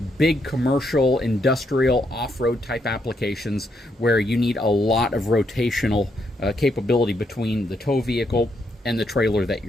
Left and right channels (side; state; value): both; normal; correlation 0.77